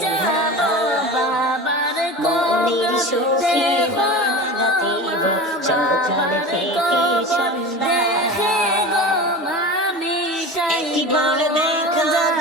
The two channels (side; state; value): both; normal; correlation 0.31